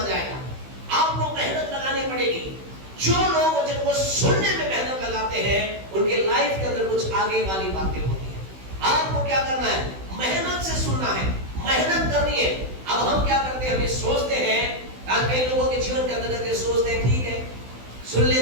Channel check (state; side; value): late; left; 16 ms